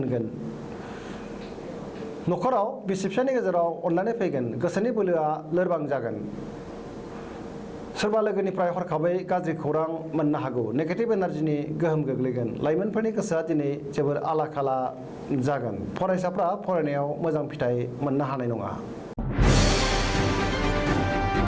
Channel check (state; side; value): identical; both; correlation 1.00